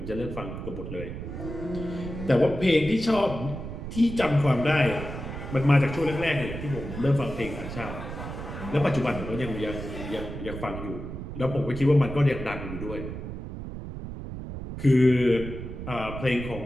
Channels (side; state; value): right; noise; rumble, 8 dB below the sound